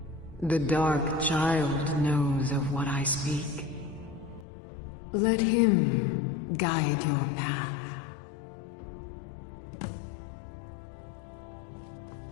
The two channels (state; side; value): drops out; right; at 4.5 s